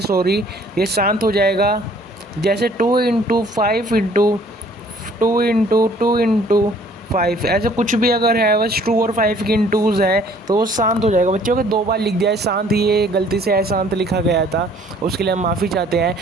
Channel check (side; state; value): both; normal; correlation 0.57